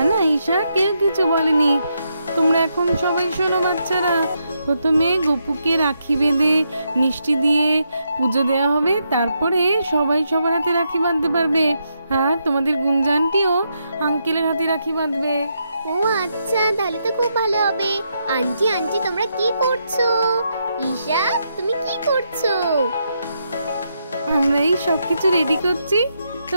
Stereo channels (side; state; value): both; inverted; correlation -0.81